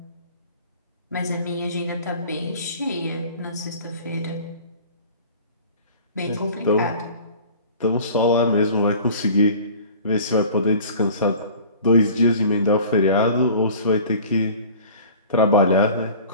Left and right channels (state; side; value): inverted; both; correlation -0.44